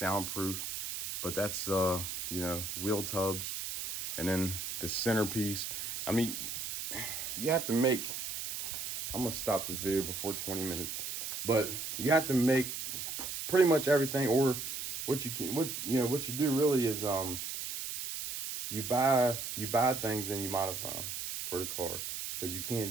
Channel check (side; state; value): right; noise; hiss, 5 dB below the sound